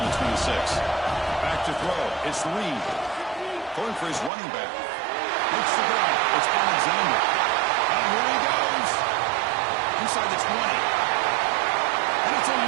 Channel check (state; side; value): drops out; left; at 4.3 s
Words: the 26. Back to throw. It's Reed. Going for his running back. Looks to go. It's Alexander. And here he goes. Inside the 20. And it's a